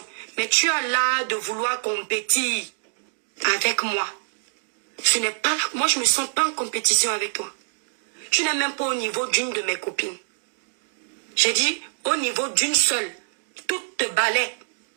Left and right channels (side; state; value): left; silent; digital silence